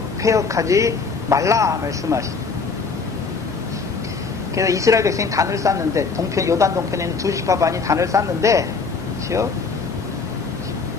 패역하지 말라 말씀하십니다. 그래서 이스라엘 백성이 단을 쌓는데 요단 동편에 있는 두 집과 반이 단을 쌓는데 그렇죠?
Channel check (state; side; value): quieter; right; 4.8 dB